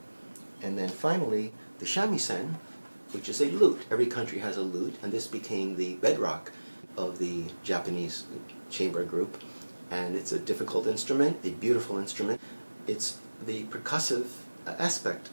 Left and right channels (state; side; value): inverted; both; correlation -1.00